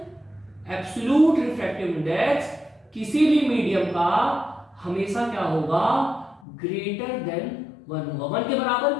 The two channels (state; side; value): drops out; right; at 6.4 s